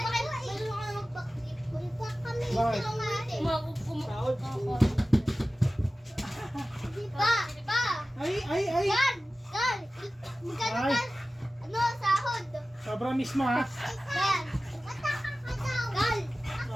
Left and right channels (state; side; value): normal; both; correlation 0.96